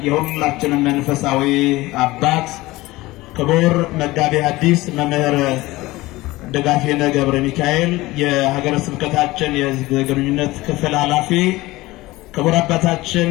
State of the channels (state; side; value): quieter; right; 19.4 dB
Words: የሁላችንም መንፈሳዊ አባት፣ ክቡር መጋቤ ሐዲስ መምህር ደጋፌነ ገብረ ሚካኤል የሀገረ ስብከታችን የሕዝብ ግንኙነት ክፍል ኃላፊ፣ ክቡር አባታችን